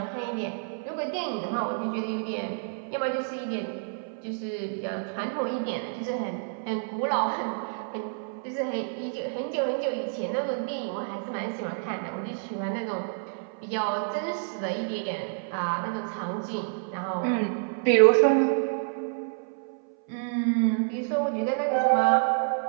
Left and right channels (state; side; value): silent; left; 59 dB below the other